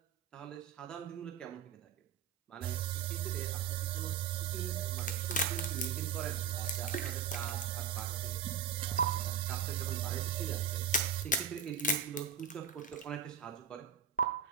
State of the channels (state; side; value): quieter; left; 6.4 dB